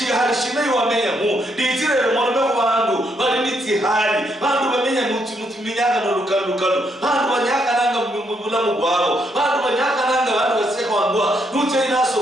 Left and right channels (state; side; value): normal; both; correlation 0.75